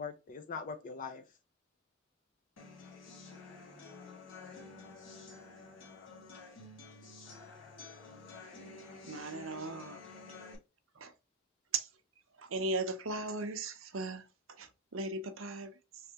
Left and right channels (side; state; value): both; normal; correlation -0.03